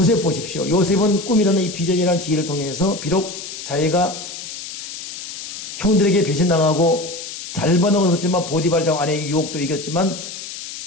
보십시오. 요셉은 꿈이라는 이 비전이라는 지혜를 통해서 비록 자기가 형들에게 배신당하고 잘 받아먹었지만 보디발장 아내의 유혹도 이겼지만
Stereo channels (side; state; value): left; noise; hiss, 10 dB below the sound